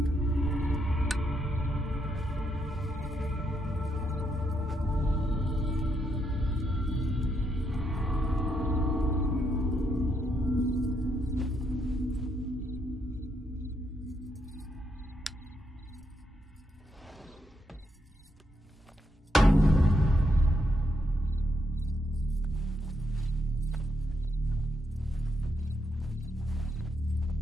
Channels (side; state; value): both; normal; correlation 0.79